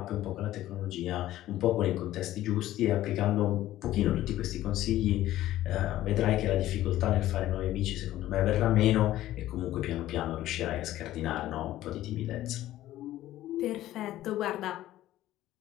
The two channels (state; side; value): quieter; right; 14.3 dB